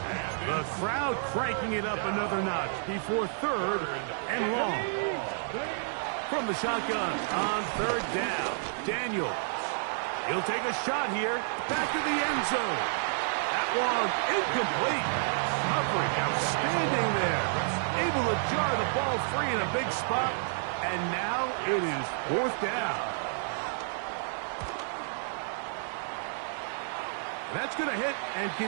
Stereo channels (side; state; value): left; silent; digital silence